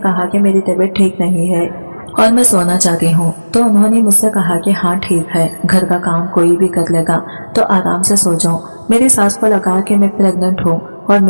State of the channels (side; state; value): both; inverted; correlation -1.00